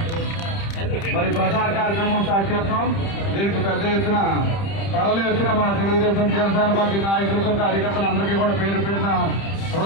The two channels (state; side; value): late; right; 30 ms